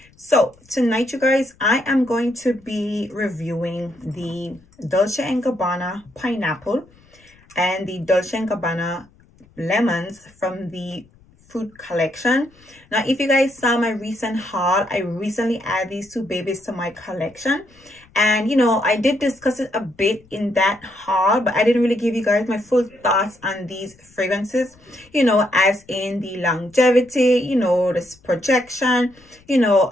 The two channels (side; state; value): left; noise; rumble, 29 dB below the sound